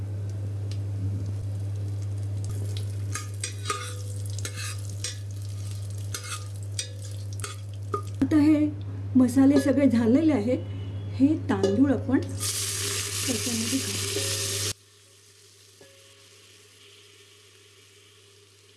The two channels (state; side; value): identical; both; correlation 1.00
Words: आता हे मसाले सगळे झालेले आहेत। हे तांदूळ आपण त्याच्यामध्ये घालू।